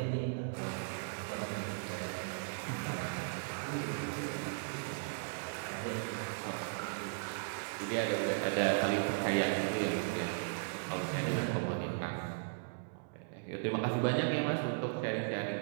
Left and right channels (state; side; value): silent; left; digital silence